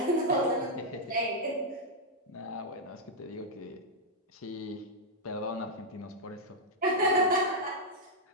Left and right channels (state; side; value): normal; both; correlation -0.04